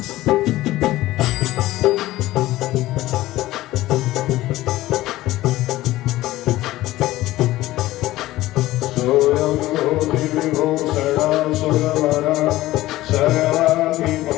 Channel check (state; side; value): quieter; right; 16.5 dB